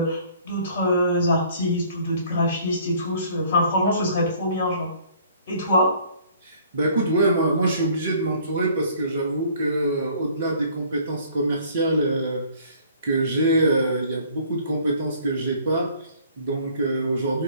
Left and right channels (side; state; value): both; inverted; correlation -0.56